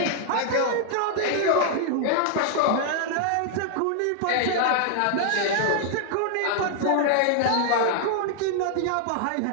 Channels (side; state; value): both; different; correlation 0.00